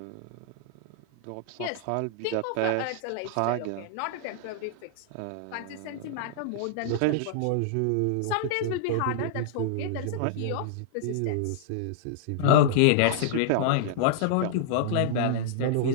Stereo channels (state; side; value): different; both; correlation -0.01